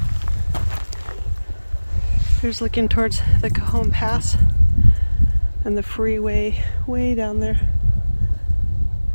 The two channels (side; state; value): both; inverted; correlation -1.00